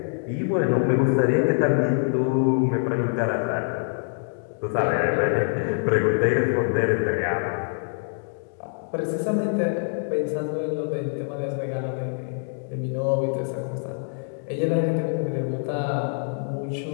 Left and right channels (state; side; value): silent; right; digital silence